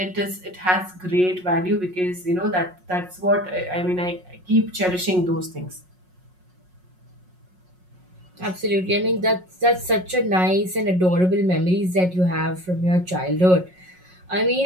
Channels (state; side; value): late; left; 5.5 ms